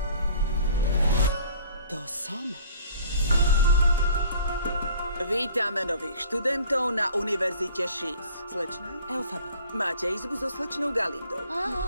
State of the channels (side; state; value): both; inverted; correlation -0.50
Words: To som. Vítame nových študentov na Univerzite Šís. Slečna? Elfaba. Máte izbu so slečnou Galindou.